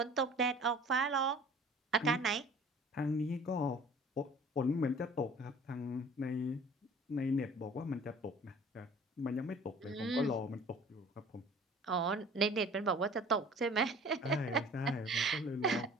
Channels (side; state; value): both; normal; correlation 0.48